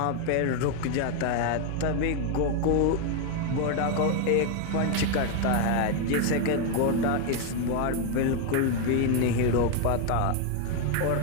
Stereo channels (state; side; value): different; both; correlation 0.01